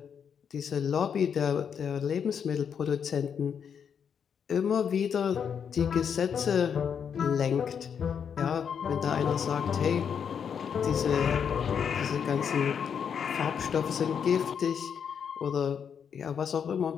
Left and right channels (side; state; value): right; quieter; 7.4 dB